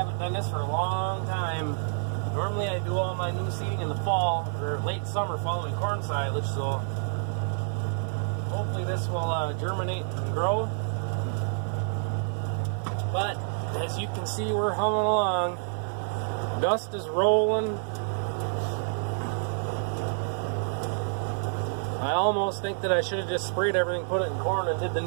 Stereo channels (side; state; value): left; silent; 59 dB below the other